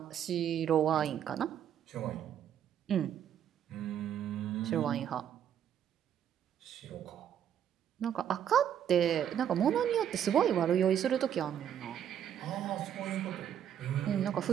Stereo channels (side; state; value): left; quieter; 9.5 dB